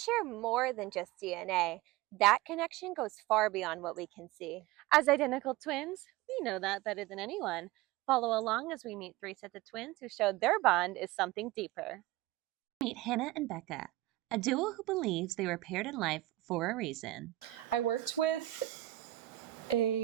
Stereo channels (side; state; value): left; quieter; 17.0 dB